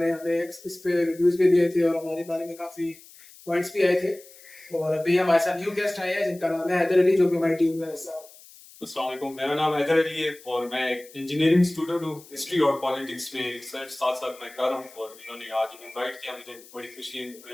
ने हमें इस पे रिव्यूज भी दिए थे और हमारे बारे में काफी पॉइंट्स भी आए थे। और अभी हमारे साथ न्यू गेस्ट आए हैं जिनका नाम है हैदर अली, जो कि हमारी टीम में हिस्सा है। अस्सलाम वालेकुम, मेरा नाम हैदर अली है और मैं एक इंजीनियरिंग स्टूडेंट हूँ। हिस्ट्री और पॉलिटिक्स में रिसर्च साथ साथ मैं कर रहा हूँ और इन्होंने आज इनवाइट किया, मुझे बड़ी खुशी है।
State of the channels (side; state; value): left; noise; hiss, 22 dB below the sound